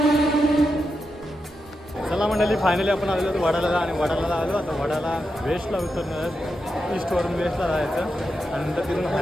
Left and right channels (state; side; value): normal; both; correlation 0.87